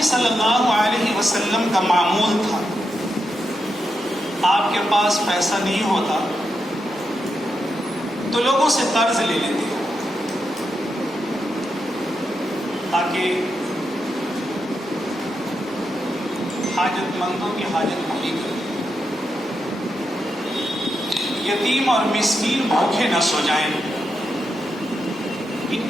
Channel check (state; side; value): normal; both; correlation 0.85